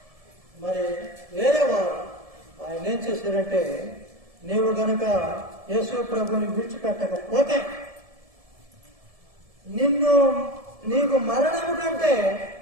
వారు ఆయన ఏం చేశారంటే, నీవు గనక యేసు ప్రభుని విడిచిపెట్టకపోతే నీకు మరణము కంటే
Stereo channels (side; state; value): left; late; 1.7 ms